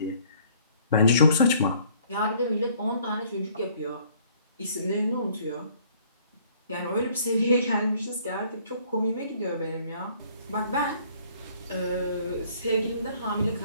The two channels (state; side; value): inverted; both; correlation -0.59